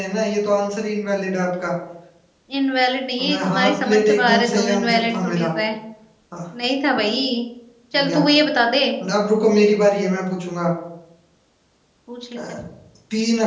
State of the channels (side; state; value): both; identical; correlation 1.00